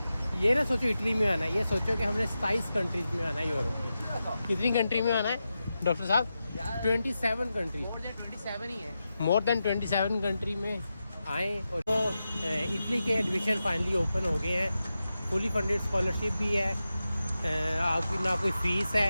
ये ना सोचो इटली में आना है, ये सोचो कि हमने 27 कंट्रीज में आना है यूरोप में। कितनी कंट्री में आना है डॉक्टर साहब? 27 कंट्री, मोर देन 27 ही है। मोर देन 27 कंट्री में आए। और तो इटली के एडमिशन फाइनली ओपन हो गए हैं, फुली फंडेड स्कॉलरशिप भी है, आपकी ना कोई फ़ीस है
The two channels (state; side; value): inverted; both; correlation -0.91